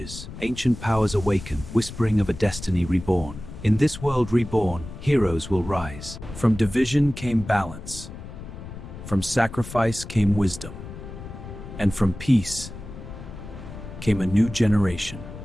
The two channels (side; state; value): left; noise; rumble, 12 dB below the sound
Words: Ancient powers awaken, whispering of a destiny reborn. In this world reborn, heroes will rise. From division came balance. From sacrifice came wisdom. And from peace came a new generation.